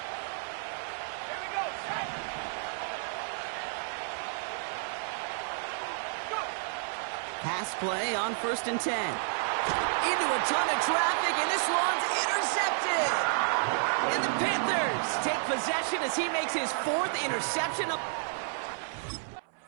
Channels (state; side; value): silent; left; 57 dB below the other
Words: Pass play on first and 10. Into a ton of traffic, and this one's intercepted. And the Panthers take possession as he makes his fourth interception.